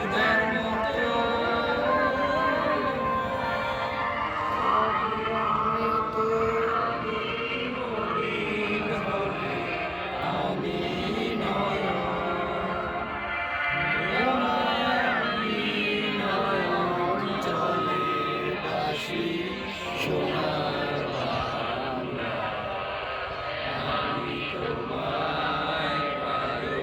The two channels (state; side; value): identical; both; correlation 1.00